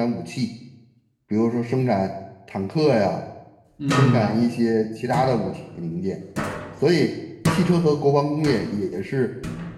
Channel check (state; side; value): identical; both; correlation 1.00